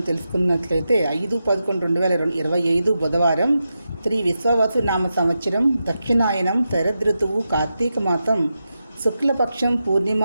తెలుసుకున్నట్లయితే 5/11/2025 బుధవారం, శ్రీ విశ్వావసు నామ సంవత్సరం, దక్షిణాయనం, శరదృతువు, కార్తీక మాసం, శుక్లపక్షం, పూర్ణిమ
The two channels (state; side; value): inverted; both; correlation -0.89